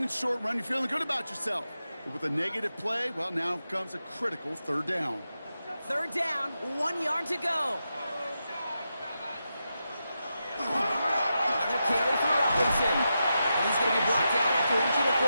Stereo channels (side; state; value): both; inverted; correlation -0.88